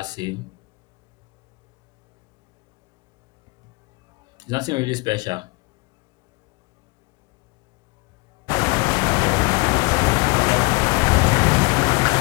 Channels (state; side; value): quieter; right; 26.9 dB